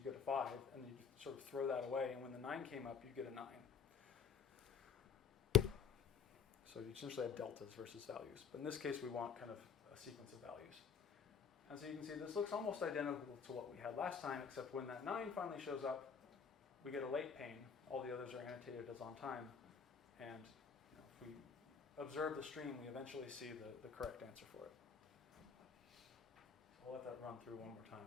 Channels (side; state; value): right; quieter; 6.7 dB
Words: get a 5, and you sort of throw that away, and when the 9 came up, you get a 9. So you essentially have deltas versus values. But in this case, we want kind of a sequence of values. And so you can see this looks almost identical to what we had last time, except when that 9 finally shows up, we get a late pane. All the others are annotated as on time. And if we observe the stream, we eventually see the correct answer for it. So I'll let that run through one more time.